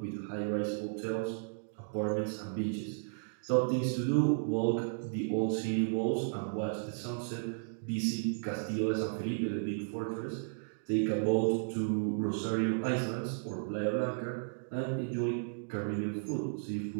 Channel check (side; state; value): left; silent; digital silence